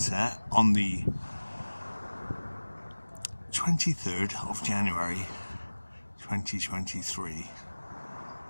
on the 23rd of January 2023.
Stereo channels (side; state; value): both; inverted; correlation -1.00